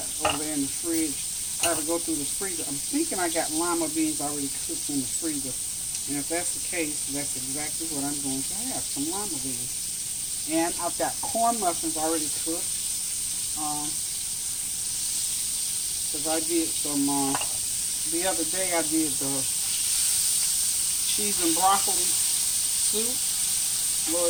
over there in the fridge. I have to go through the freezer. I'm thinking I got lima beans already cooked in the freezer. And if that's the case, that's exactly what I'm going to have, some lima beans. And I've got corn muffins already cooked. Because I did some, the other day I did the cheese and broccoli soup.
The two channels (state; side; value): noise; left; rumble, 18 dB below the sound